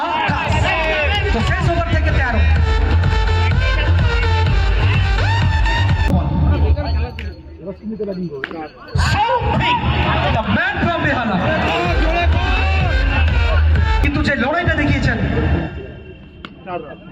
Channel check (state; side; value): identical; both; correlation 1.00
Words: আকাশ। তো শেষ ওভার থেকে 13। সৌভিক, the man from বেহালা। কিন্তু যে লড়াইটা দেখিয়েছেন,